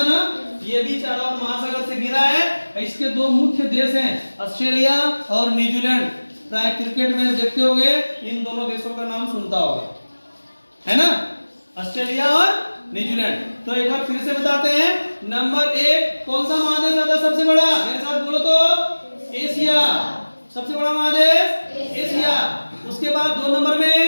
ना, ये भी चारों ओर महासागर से घिरा है। इसके 2 मुख्य देश हैं, ऑस्ट्रेलिया और न्यूजीलैंड। प्राय क्रिकेट मैच देखते होंगे, इन दोनों देशों का नाम सुनता होगा, है ना? ऑस्ट्रेलिया और न्यूजीलैंड। तो एक बार फिर से बताते हैं। नंबर 1 कौन सा महादेश आता है सबसे बड़ा? मेरे साथ बोलो तो। एशिया। सबसे बड़ा महादेश एशिया। उसके बाद 2 नंबर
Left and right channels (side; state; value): both; inverted; correlation -1.00